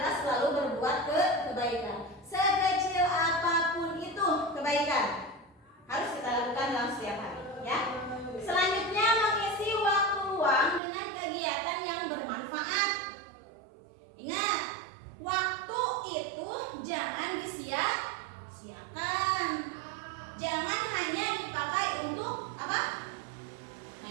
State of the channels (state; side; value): drops out; left; at 10.8 s